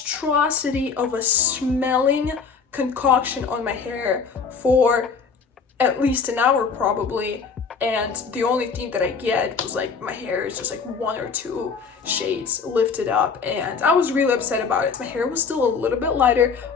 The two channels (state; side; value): quieter; right; 5.5 dB